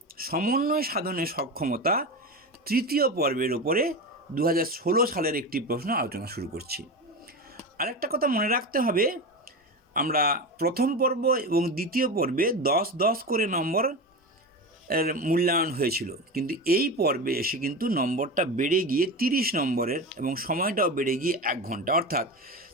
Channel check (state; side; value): normal; both; correlation 0.23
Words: সমন্বয় সাধনে সক্ষমতা তৃতীয় পর্বের ওপরে 2016 সালের একটি প্রশ্ন আলোচনা শুরু করছি। আরেকটা কথা মনে রাখতে হবে, আমরা প্রথম পর্ব এবং দ্বিতীয় পর্বে 10-10 করে নম্বর এর মূল্যায়ন হয়েছিল, কিন্তু এই পর্বে এসে কিন্তু নম্বরটা বেড়ে গিয়ে 30 নম্বরের এবং সময়টাও বেড়ে গিয়ে 1 ঘন্টা, অর্থাৎ